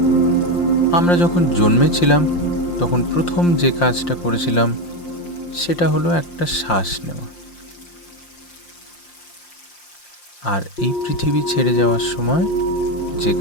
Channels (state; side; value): late; right; 5.7 ms